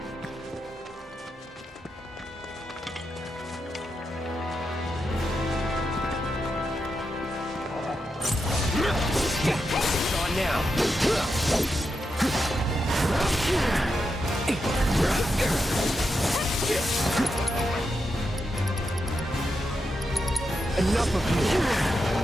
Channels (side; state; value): both; normal; correlation 0.86